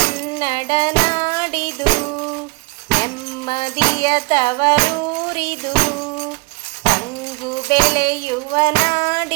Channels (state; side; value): quieter; left; 28.2 dB